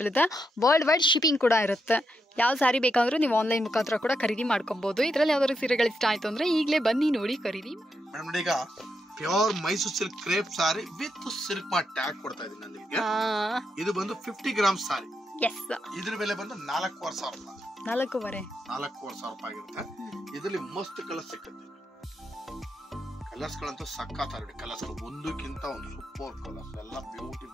ಇದೆ. ವರ್ಲ್ಡ್ ವೈಡ್ ಶಿಪ್ಪಿಂಗ್ ಕೂಡ ಇರುತ್ತೆ. ಯಾವ ಸಾರಿ ಬೇಕಾದ್ರೂ ನೀವು ಆನ್ಲೈನ್ ಮುಖಾಂತರ ಕೂಡ ಖರೀದಿ ಮಾಡ್ಕೋಬಹುದು. ಇದರಲ್ಲಿ ಯಾವ್ದಾದ್ರು ಸೀರೆಗಳು ಇಷ್ಟ ಆಯ್ತು ಅಂದ್ರೆ ಈಗಲೇ ಬನ್ನಿ, ನೋಡಿ, ಖರೀದಿ. ಮೇಡಮ್ ನೋಡಿ, ಈಗ pure Mysuru silk crepe sorry with silk mart tag ಕೊಡ್ತಾ ಇದೀನಿ ನಾನು ನಿಮಗೆ. ಇದು ಬಂದು 50 ಗ್ರಾಮ್ಸ್ ಸಾರಿ. ಎಸ್, ಇದ್ರ ಬೆಲೆ ಬಂದು 4,500 ರೂಪಾಯಿ. 4,500 ರೂಪಾಯಿ ಆಗಿರುತ್ತೆ. ಇದರಲ್ಲಿ ಮಸ್ತ್ ಕಲರ್ ಸಿಕ್ಕುತ್ತೆ. ಕಲರ್ಸ್ ಗಳಂತೂ ಸಕ್ಕತ್ತಾಗಿ ಕಲರ್ಸ್, ಒಂದಕ್ಕಿಂತ ಒಂದು ಸೂಪರ್ ಕಲರ್ಸ್, ಎಲ್ಲ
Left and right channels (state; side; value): normal; both; correlation 0.83